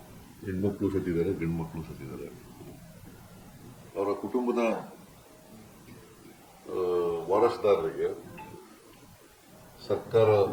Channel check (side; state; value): both; identical; correlation 1.00